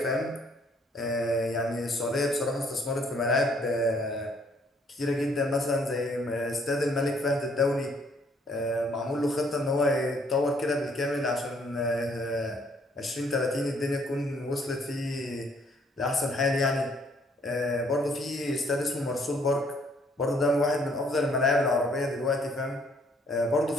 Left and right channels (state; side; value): normal; both; correlation 0.65